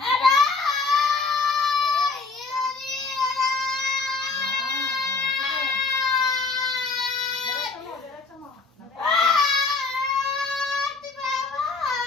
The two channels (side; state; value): right; quieter; 4.2 dB